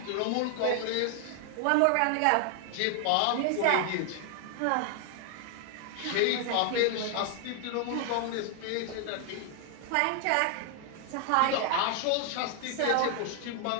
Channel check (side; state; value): both; different; correlation 0.00